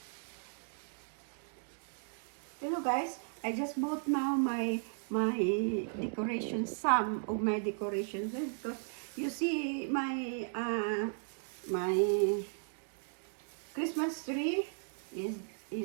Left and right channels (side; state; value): left; silent; digital silence